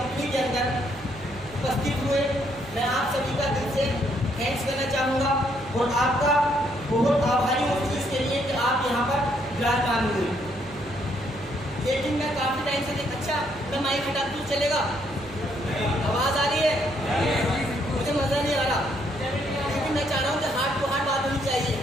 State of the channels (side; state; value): right; noise; hum, 19 dB below the sound